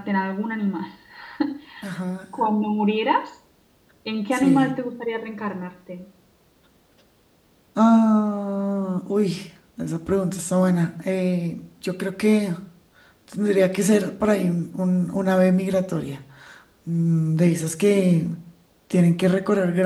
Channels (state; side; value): identical; both; correlation 1.00